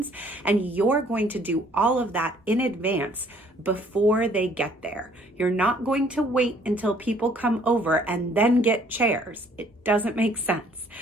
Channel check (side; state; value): both; normal; correlation 0.60